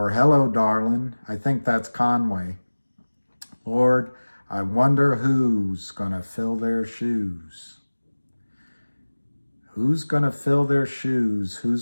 Hello, Darlin'. I think that's Conway. Lord, I wonder who's gonna fill their shoes. Who's gonna fill their shoes?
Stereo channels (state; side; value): inverted; both; correlation -1.00